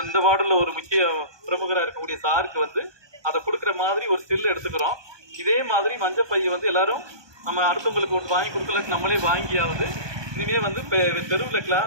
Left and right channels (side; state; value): left; late; 1.2 ms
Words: இந்த வார்டில் ஒரு முக்கிய பிரமுகராக இருக்கக்கூடிய சாருக்கு வந்து அதை கொடுக்குற மாதிரி ஒரு ஸ்டில் எடுத்துக்கிறோம். இதே மாதிரி மஞ்சள் பையை வந்து எல்லாரும் நம்ம அடுத்தவங்களுக்கு ஒன்று வாங்கி கொடுக்கலன்னு நம்மளே வாங்கியாவது இனிமேல் வந்து தெருவில்